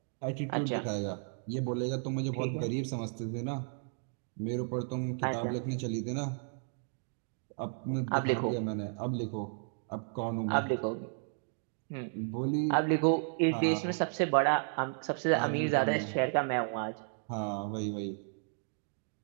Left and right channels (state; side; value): silent; left; 55 dB below the other